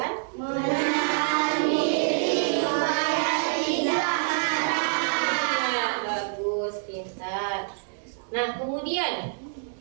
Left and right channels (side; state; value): left; silent; digital silence